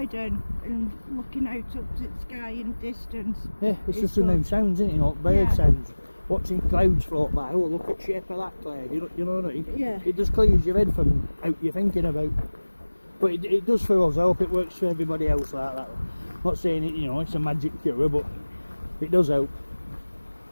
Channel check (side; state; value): both; inverted; correlation -1.00